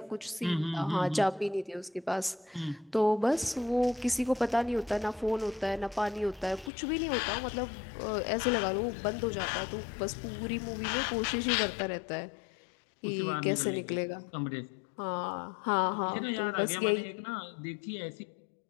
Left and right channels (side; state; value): right; drops out; at 6.7 s